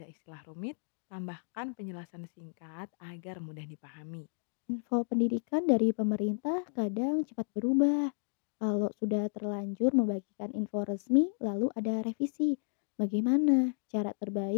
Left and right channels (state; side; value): silent; right; digital silence